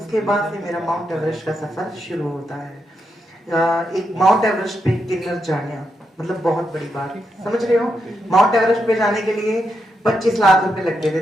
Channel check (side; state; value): both; normal; correlation 0.83